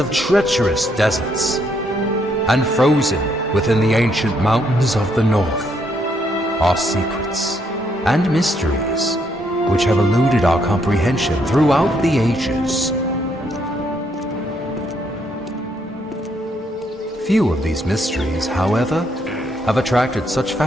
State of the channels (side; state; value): both; normal; correlation 0.73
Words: treacherous deserts, and frozen within the ancient mountains of the north, are secrets and mysteries which have eluded our comprehension throughout the ages. Few of these mysteries, however, have attracted such